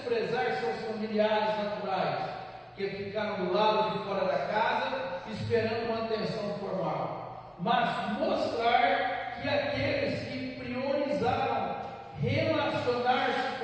seus familiares naturais, que ficaram do lado de fora da casa, esperando uma atenção formal, mas mostrar que aqueles que priorizaram relacionar-se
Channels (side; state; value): both; identical; correlation 1.00